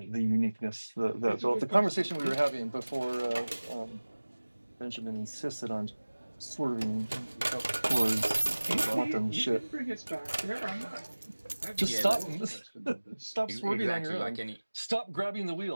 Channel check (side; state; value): both; inverted; correlation -1.00